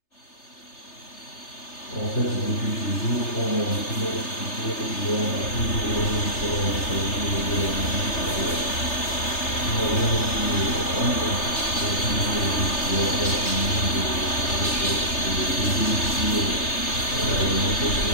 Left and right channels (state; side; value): late; right; 3.3 ms